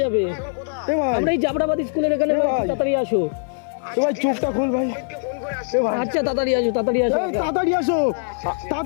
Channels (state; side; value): silent; right; 57 dB below the other